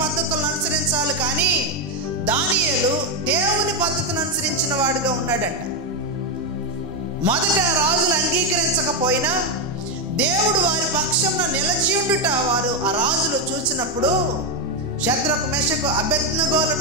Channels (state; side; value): normal; both; correlation 0.05